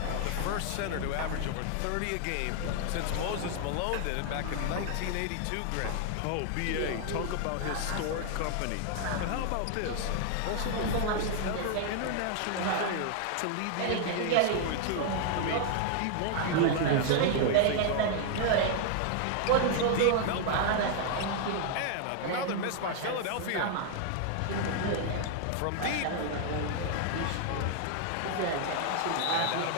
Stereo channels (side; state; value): both; different; correlation 0.00